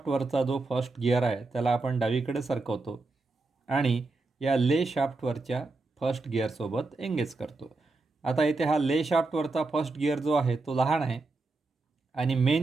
जो फर्स्ट गिअर आहे त्याला आपण डावीकडे सरकवतो आणि या ले शाफ्टवरच्या फर्स्ट गिअरसोबत एंगेज करतो. आता इथे हा ले शाफ्टवरचा फर्स्ट गिअर जो आहे तो लहान आहे आणि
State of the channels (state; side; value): quieter; left; 3.5 dB